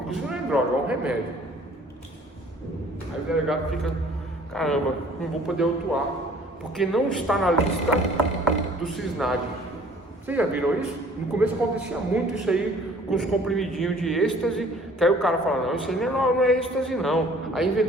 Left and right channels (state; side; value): normal; both; correlation 0.54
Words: inclusive não é droga, é um remédio. Aí o delegado fica, caramba, não vou poder autuar, porque não está na lista do CISNAD. Vocês já viram isso? No começo acontecia muito isso aí, com os comprimidinhos de êxtase, que aí o cara fala, não, isso aí não é êxtase não. Aí